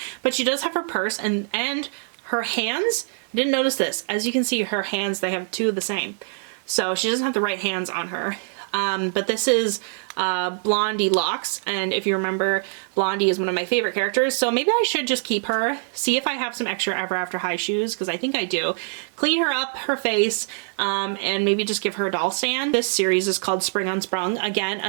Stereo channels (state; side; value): silent; left; digital silence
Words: but she does have her purse and her hands. I didn't notice this. As you can see, her hands, they have two of the same. So she doesn't have the right hands on her. But this is Blondie Locks, and if you remember, Blondie is one of my favorite characters, so maybe I should just keep her, see if I have some extra Ever After High shoes, because I think I do. Clean her up, her face, and maybe just give her a doll stand. This series is called Spring Unsprung. Again,